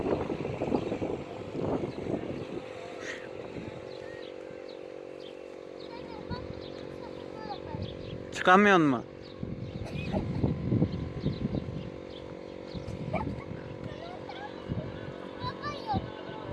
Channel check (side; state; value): both; identical; correlation 1.00